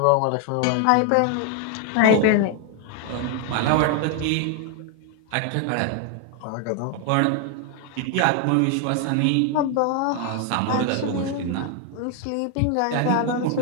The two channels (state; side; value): different; both; correlation 0.00